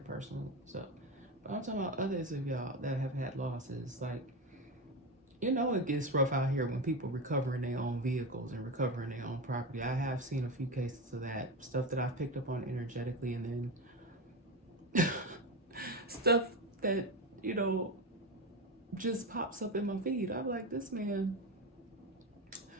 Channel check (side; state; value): both; normal; correlation 0.18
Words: personal stuff. But I'm talking about others of y'all that have had losses. Like, you know, it gets rough out here when people recovering their own vehicles and recovering their own property. I have seen a few cases of that. Stuff that I've picked up on energetically, and then stuff that, you know, just pops up in my feed. I'm like, this man